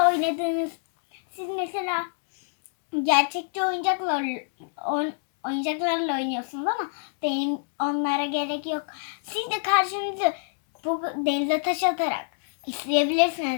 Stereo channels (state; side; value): silent; right; digital silence